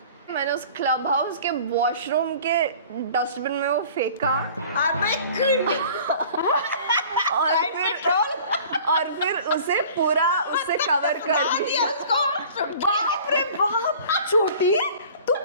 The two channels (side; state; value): both; inverted; correlation -0.46